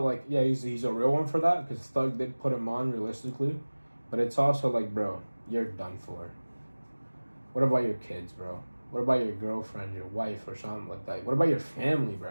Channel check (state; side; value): inverted; both; correlation -1.00